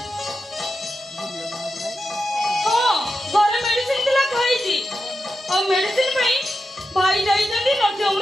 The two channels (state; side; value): normal; both; correlation 0.89